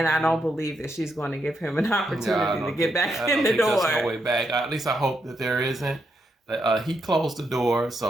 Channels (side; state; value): both; normal; correlation 0.80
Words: I don't believe that she's going to give him an opportunity to get back in the door. There's no way back. At least I hope that there isn't. He closed the door,